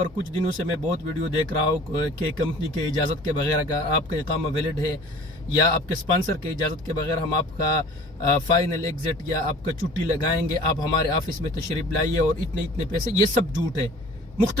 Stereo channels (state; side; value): normal; both; correlation 0.47